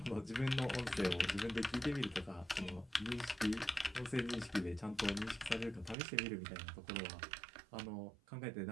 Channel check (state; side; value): drops out; left; at 6.0 s